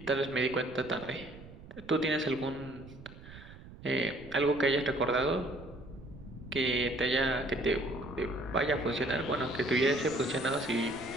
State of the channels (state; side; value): noise; right; rumble, 17 dB below the sound